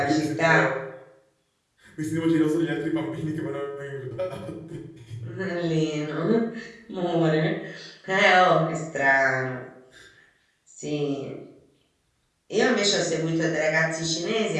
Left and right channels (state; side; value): identical; both; correlation 1.00